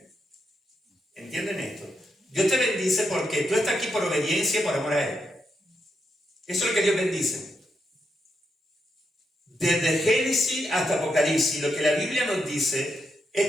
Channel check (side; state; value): both; normal; correlation 0.82